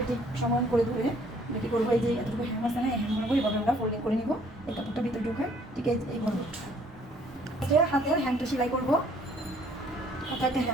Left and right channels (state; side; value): normal; both; correlation 0.61